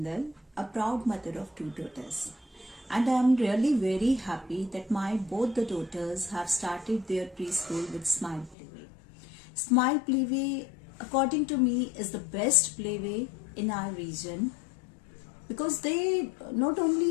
a proud mother of two daughters. And I am really very happy that my both the daughters have started their preschool with Smile Playway. Smile Playway, according to me, is the best playway in our region because they not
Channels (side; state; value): right; drops out; at 8.6 s